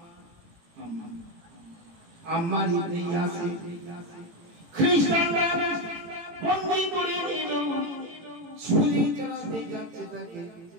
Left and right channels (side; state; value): left; late; 18 ms